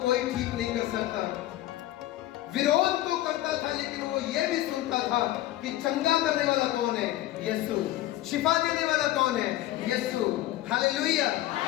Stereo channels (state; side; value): quieter; right; 15.1 dB